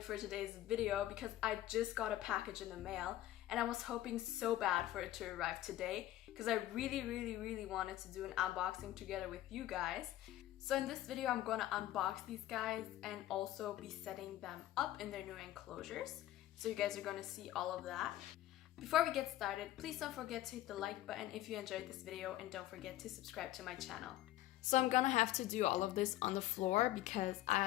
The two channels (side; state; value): right; quieter; 14.5 dB